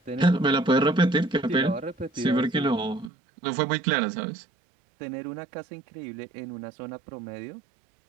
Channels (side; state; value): left; drops out; at 3.1 s